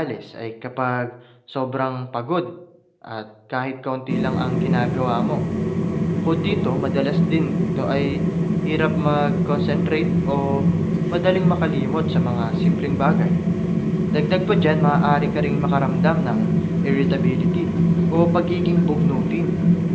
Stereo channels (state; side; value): identical; both; correlation 1.00